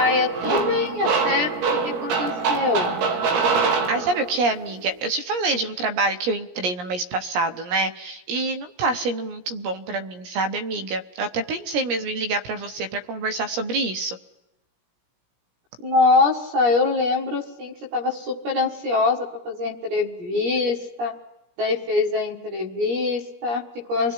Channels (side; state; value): left; late; 17 ms